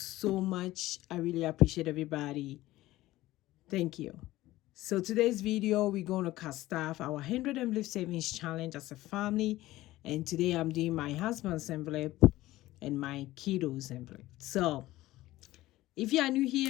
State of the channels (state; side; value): quieter; right; 16.7 dB